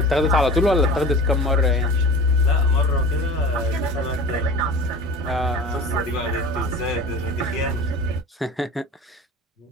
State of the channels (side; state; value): both; normal; correlation 0.38